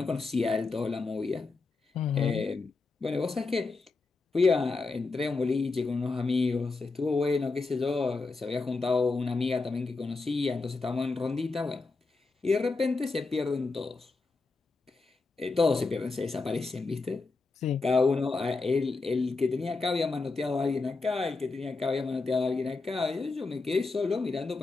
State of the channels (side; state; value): right; quieter; 3.9 dB